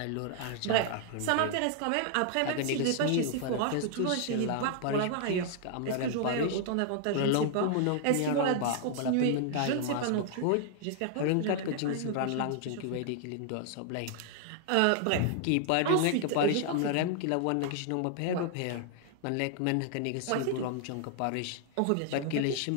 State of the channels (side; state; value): both; different; correlation 0.00